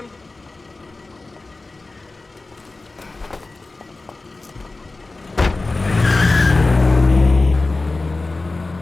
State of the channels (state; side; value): quieter; right; 3.4 dB